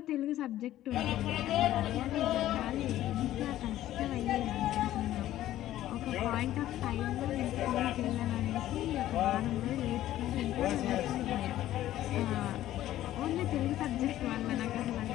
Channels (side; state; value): right; quieter; 13.6 dB